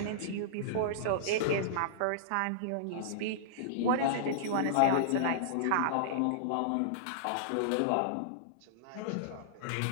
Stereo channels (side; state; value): both; different; correlation -0.02